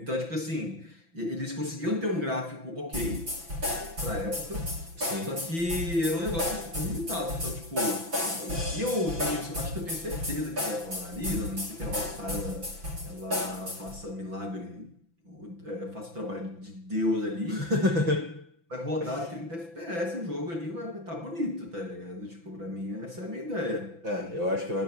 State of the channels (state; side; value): late; left; 5.9 ms